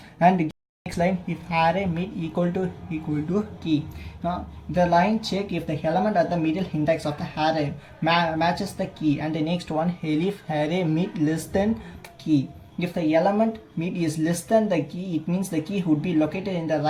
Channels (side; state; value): both; identical; correlation 1.00